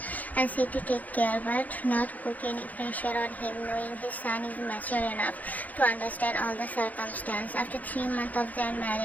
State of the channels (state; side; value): late; right; 0.079 ms